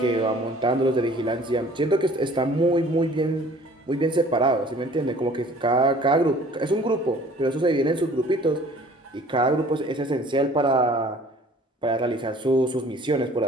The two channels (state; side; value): normal; both; correlation 0.51